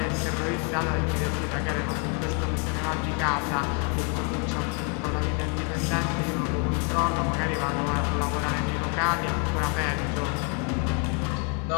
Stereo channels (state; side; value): quieter; right; 37.9 dB